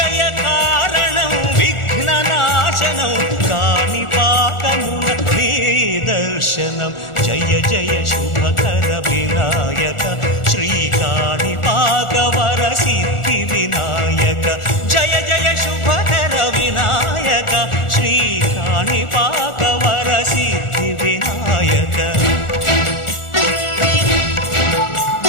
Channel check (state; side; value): late; right; 1.4 ms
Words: కారణం విఘ్న నాశనం కాణిపాకమున నీ దర్శనం. జయ జయ శుభకర వినాయక శ్రీకాణిపాకవర సిద్ధి వినాయక. జయ జయ శుభకర వినాయక శ్రీకాణిపాకవర సిద్ధి వినాయక.